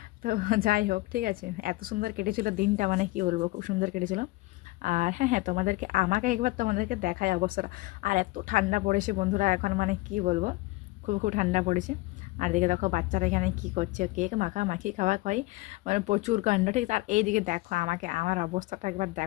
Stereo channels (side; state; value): right; quieter; 20.9 dB